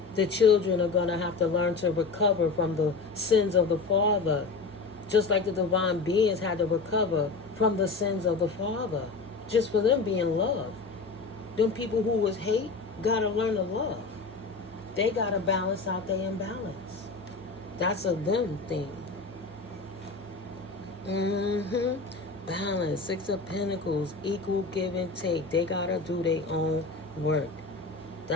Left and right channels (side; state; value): right; quieter; 4.1 dB